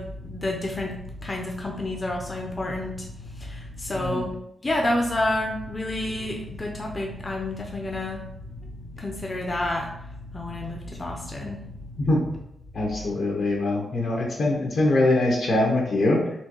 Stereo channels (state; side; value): normal; both; correlation 0.85